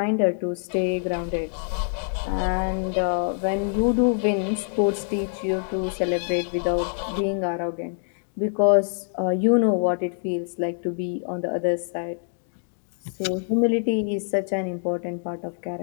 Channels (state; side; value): silent; right; digital silence